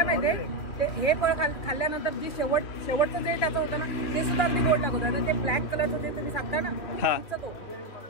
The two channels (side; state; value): right; late; 2.7 ms